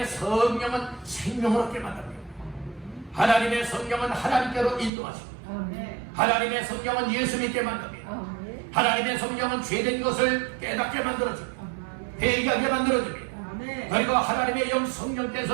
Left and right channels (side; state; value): left; drops out; at 4.9 s